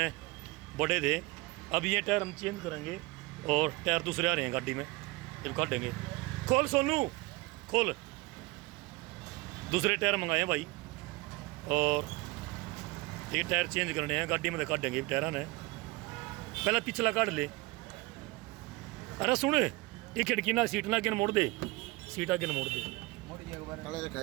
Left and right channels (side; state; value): left; quieter; 23.2 dB